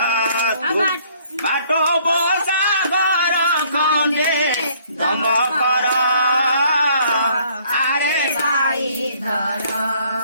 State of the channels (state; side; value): inverted; both; correlation -0.61